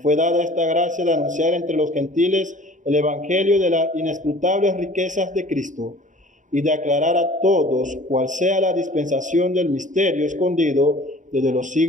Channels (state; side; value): late; left; 0.36 ms